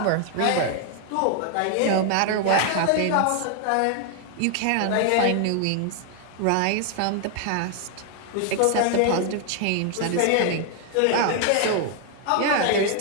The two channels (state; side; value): different; both; correlation 0.00